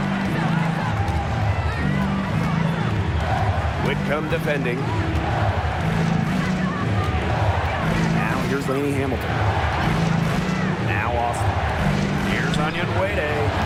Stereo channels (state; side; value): identical; both; correlation 1.00